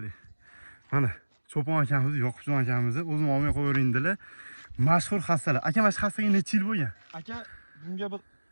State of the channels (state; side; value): inverted; both; correlation -1.00